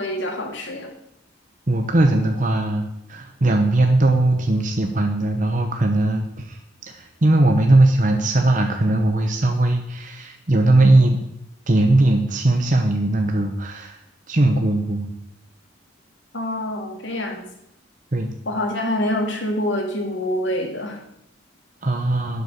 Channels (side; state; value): both; normal; correlation 0.83